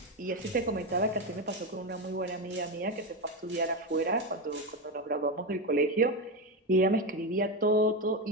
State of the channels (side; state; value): both; normal; correlation 0.12